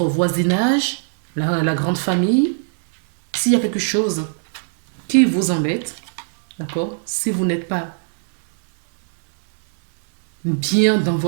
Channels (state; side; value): silent; left; 66 dB below the other